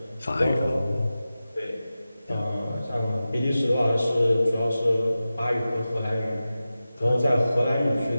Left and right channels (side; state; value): both; inverted; correlation -0.94